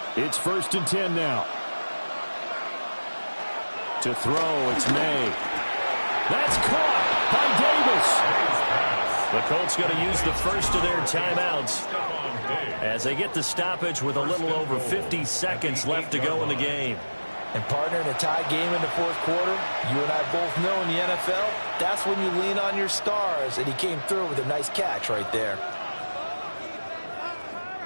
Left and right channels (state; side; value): inverted; both; correlation -1.00